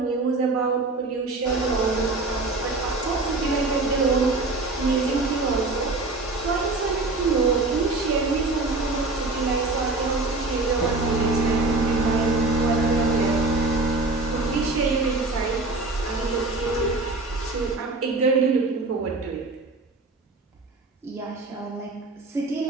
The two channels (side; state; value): left; quieter; 3.3 dB